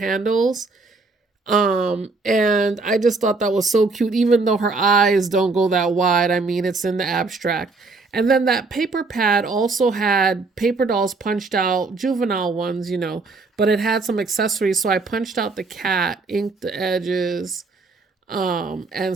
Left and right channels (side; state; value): left; quieter; 3.8 dB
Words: And I just thought that was so cute, even though her eyes don't go that wide. I mean, it's in the abstract. And then that paper pad also had paper dolls punched out, juvenile ones, but it had some accessories. So I punched out the cat, inked the edges,